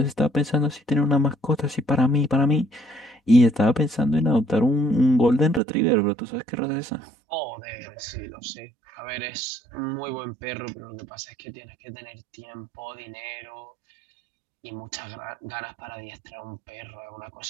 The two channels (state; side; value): drops out; left; at 5.6 s